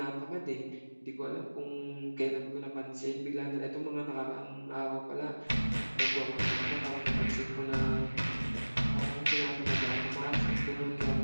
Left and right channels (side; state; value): both; inverted; correlation -1.00